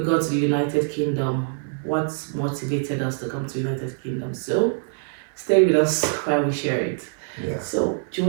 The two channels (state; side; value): silent; left; digital silence